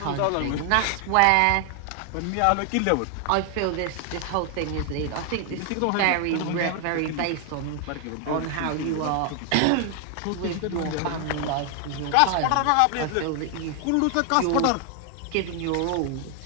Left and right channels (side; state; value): both; different; correlation 0.00